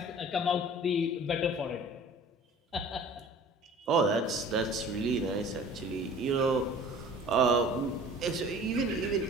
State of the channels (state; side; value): normal; both; correlation 0.45